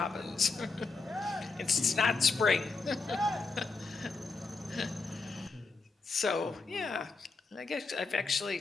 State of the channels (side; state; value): right; quieter; 4.0 dB